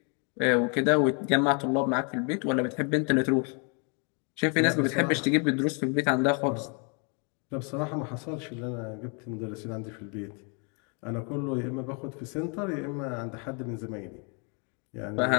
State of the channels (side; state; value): right; quieter; 36.5 dB